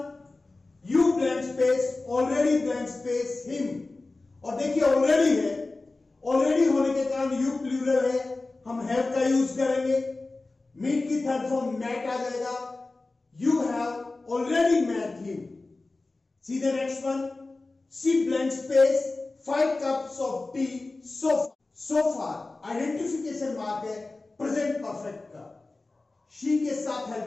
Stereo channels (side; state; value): right; quieter; 3.3 dB